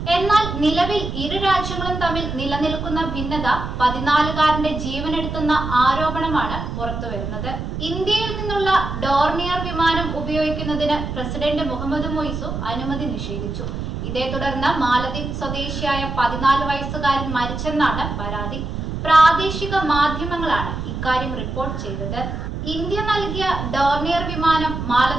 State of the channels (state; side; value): noise; right; rumble, 5 dB below the sound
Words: എന്നാൽ നിലവിൽ ഇരു രാജ്യങ്ങളും തമ്മിൽ നിലനിൽക്കുന്ന ഭിന്നത 14കാരന്റെ ജീവനെടുത്തുന്ന ആരോപണമാണ് പുറത്തുവരുന്നത്. ഇന്ത്യയിൽ നിന്നുള്ള ഡോർണിയർ വിമാനം ഉപയോഗിക്കുന്നതിന് പ്രസിഡന്റ് മുഹമ്മദ് മൊയ്സു അനുമതി നിഷേധിച്ചു. ഇതേ തുടർന്ന് മാലദ്വീപ് സ്വദേശിയായ 14 വയസ്സുകാരൻ മരിച്ചെന്നാണ് പരാതി. പ്രാദേശിക മാധ്യമങ്ങളാണ് ഇക്കാര്യം റിപ്പോർട്ട് ചെയ്തത്. ഇന്ത്യ നൽകിയ ഡോർണിയർ വിമാനം